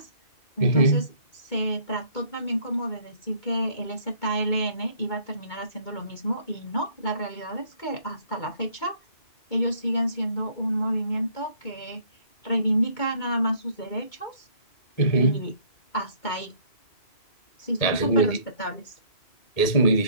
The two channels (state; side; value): late; right; 2.2 ms